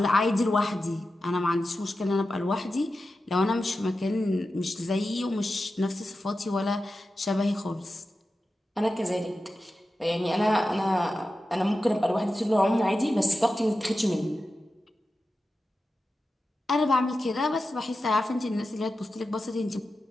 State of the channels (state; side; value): normal; both; correlation 0.92